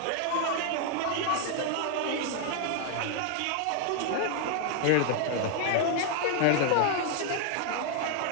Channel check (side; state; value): both; different; correlation 0.00